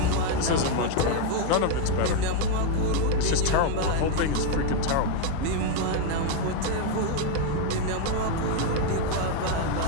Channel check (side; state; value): both; different; correlation 0.01